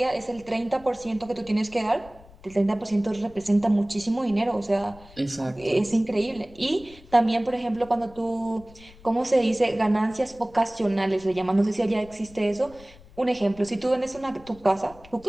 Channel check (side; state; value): left; noise; rumble, 23 dB below the sound